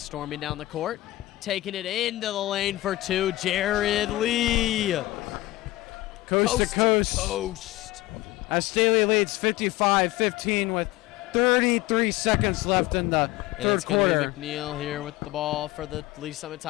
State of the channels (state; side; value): quieter; right; 17.5 dB